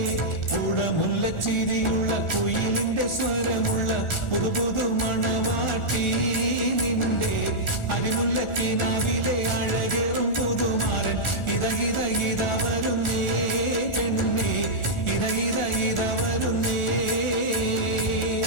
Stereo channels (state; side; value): late; right; 1.4 ms